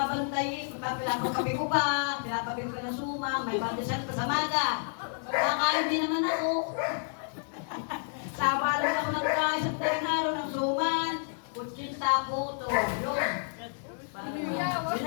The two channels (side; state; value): right; silent; 58 dB below the other